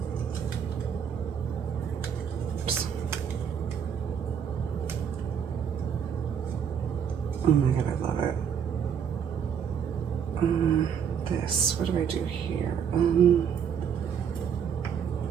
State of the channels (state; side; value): quieter; left; 7.7 dB